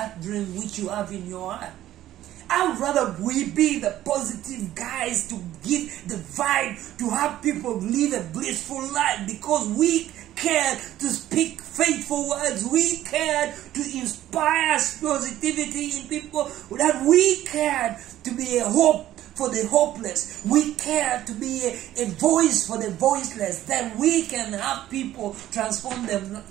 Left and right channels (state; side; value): quieter; left; 13.4 dB